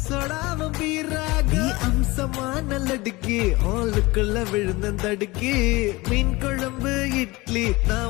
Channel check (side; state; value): right; quieter; 22.1 dB